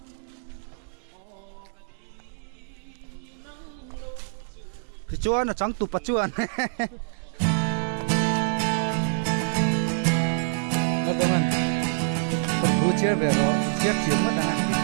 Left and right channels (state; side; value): silent; left; 61 dB below the other